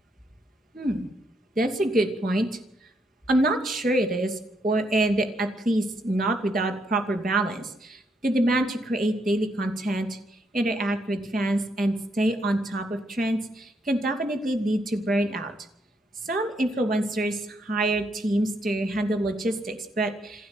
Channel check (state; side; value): normal; both; correlation 0.76